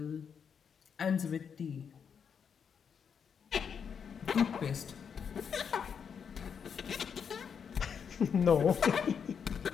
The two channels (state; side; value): quieter; right; 7.0 dB